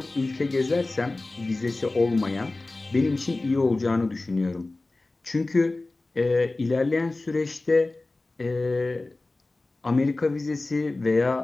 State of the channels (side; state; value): right; quieter; 3.1 dB